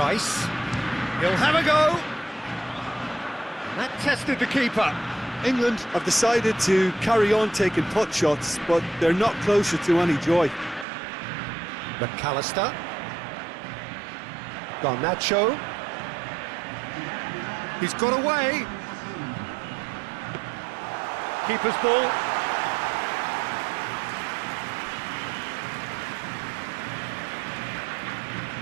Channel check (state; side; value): drops out; left; at 10.9 s